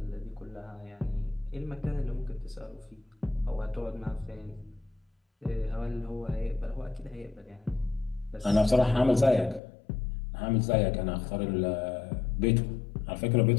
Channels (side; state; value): right; drops out; at 9.6 s